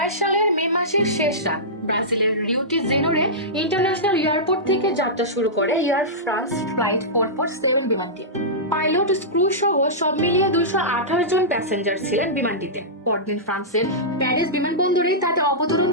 সালের মে মাসের শেষ রাত ব্রাজিলের Rio de Janeiro international airport থেকে যাত্রা শুরু করে এয়ার ফ্রান্স ফ্লাইট 447 বিমানটি। পাইলট, ক্রু সহ সব মিলিয়ে 228 জন প্যাসেঞ্জার ছিলেন বিমানটিতে। পরদিন ফ্রান্সের প্যারিস বিমানবন্দরে তাতে অবতরণ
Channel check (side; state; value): both; normal; correlation -0.15